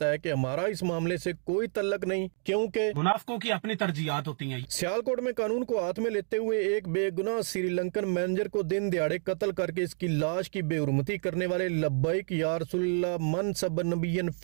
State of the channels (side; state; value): left; silent; 57 dB below the other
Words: है कि हमारा इस मामले से कोई तल्लक नहीं, क्योंकि मुनाफिकों की अपनी तरजीहात होती हैं। सियालकोट में कानून को हाथ में लेते हुए एक बेगुनाह श्रीलंकन मैनेजर को दिन दिहाड़े कत्ल करके इसकी लाश की बेहुरमती करने वाले लब्बैक या रसूलुल्लाह मन सब नबियन